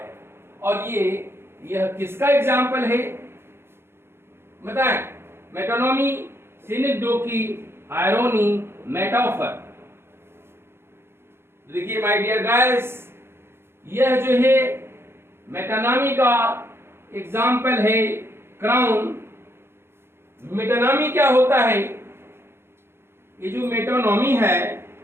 और यह किसका एग्जाम्पल है बताएं? मेटोनॉमी, सिनेक्डोकी, आयरोनी, मेटाफर। देखिए माय डियर गाइस, यह जो है मेटानॉमी का एग्जाम्पल है क्राउन। मेटानॉमी क्या होता है? ये जो मेटोनॉमी है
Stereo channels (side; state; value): left; late; 0.12 ms